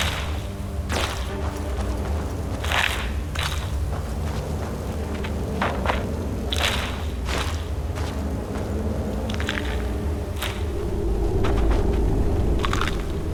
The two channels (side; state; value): both; identical; correlation 1.00